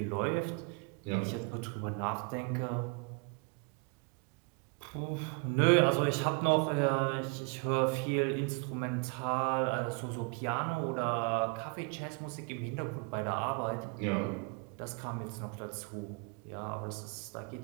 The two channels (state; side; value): quieter; left; 32.3 dB